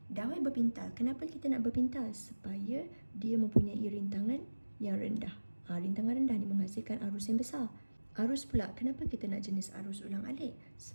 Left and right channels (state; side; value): inverted; both; correlation -1.00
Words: Dawai berpintal. Kenapa kita nak berpintal? Supaya dia mempunyai rintangan yang rendah. Rintangan rendah ni menghasilkan arus yang besar. Arus pula, kenapa kita nak jenis arus ulang-alik?